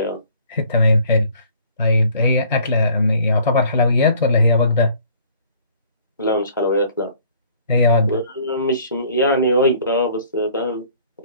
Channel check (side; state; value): both; inverted; correlation -0.56